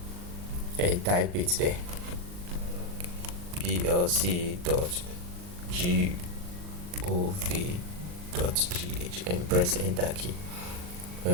and type it there, plc.gov.gh, and press enter key. When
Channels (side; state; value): left; late; 40 ms